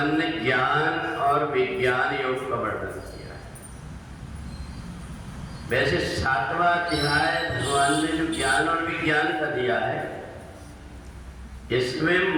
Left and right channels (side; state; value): both; identical; correlation 1.00